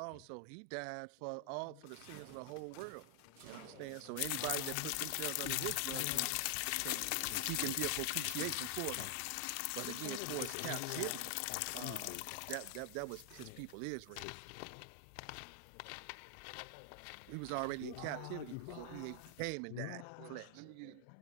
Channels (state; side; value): different; both; correlation 0.00